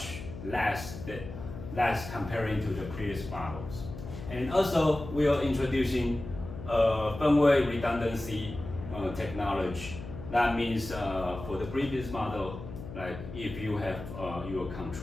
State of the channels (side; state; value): left; noise; hum, 11 dB below the sound